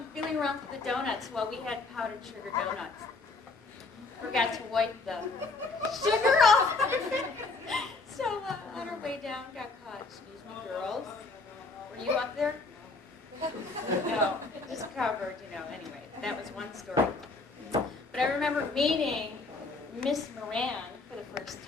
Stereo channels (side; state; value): right; quieter; 3.6 dB